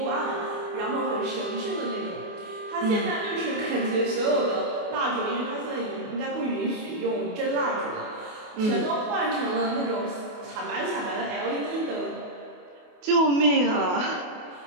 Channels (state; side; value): late; left; 28 ms